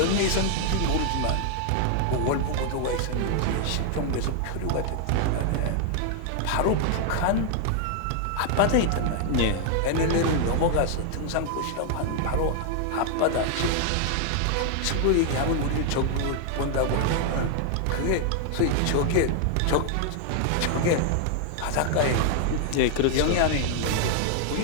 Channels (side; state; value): both; different; correlation 0.00